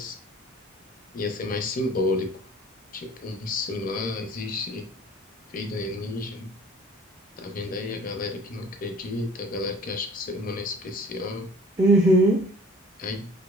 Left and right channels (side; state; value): both; normal; correlation 0.49